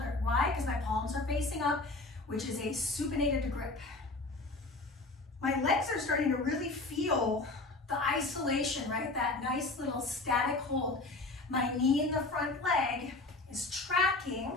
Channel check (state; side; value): quieter; right; 3.2 dB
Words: Why? Because my palms are facing up, which is a supinated grip. My legs are starting to really feel the isolation, right? That nice little static hold. My knee in the front leg is tracking